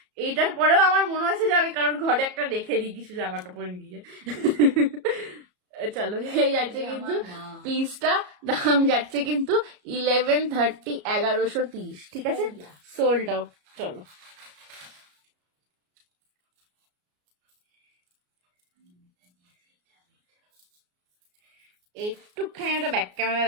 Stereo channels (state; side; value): late; left; 33 ms